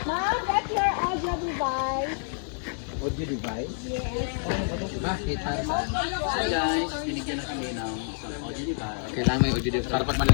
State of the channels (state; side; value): silent; right; 59 dB below the other